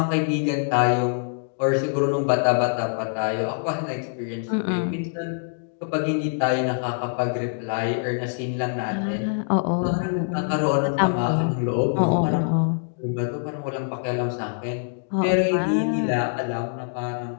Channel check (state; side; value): silent; right; digital silence